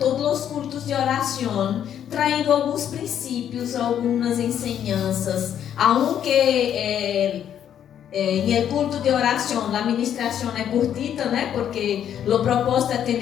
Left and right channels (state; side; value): quieter; right; 9.7 dB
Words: os cultos de oração, traindo alguns princípios, algumas enseñanças, aunque em el culto de oração, a ministração é curtita, né? Porque o propósito é